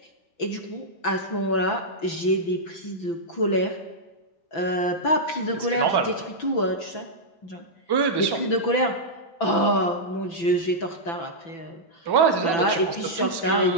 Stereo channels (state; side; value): late; right; 6.0 ms